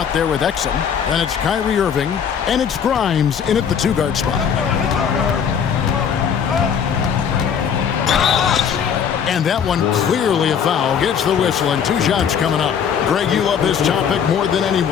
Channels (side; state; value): right; quieter; 7.6 dB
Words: there with Exum, and it's Kyrie Irving, and it's Grimes in at the 2-guard spot. And that one clearly a foul. Gets the whistle, and 2 shots coming up. Greg, you love this topic more than